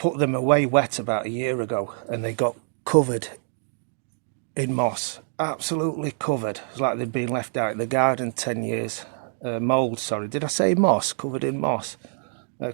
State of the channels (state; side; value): silent; left; digital silence